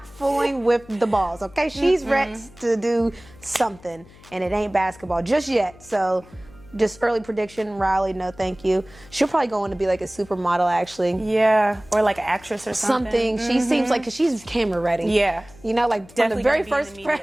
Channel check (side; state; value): left; noise; hum, 23 dB below the sound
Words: fooling with the balls, okay? She's ready to do something, and it ain't basketball just yet. So just early prediction, Riley, no thank you. She'll probably go on to be like a supermodel, actually. Yeah, or like an actress or something. She seems like, because she's camera ready. Yeah. Like from Definitely the very gonna be in first the